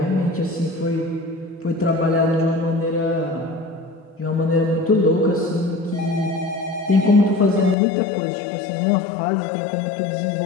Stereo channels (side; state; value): right; drops out; at 7.8 s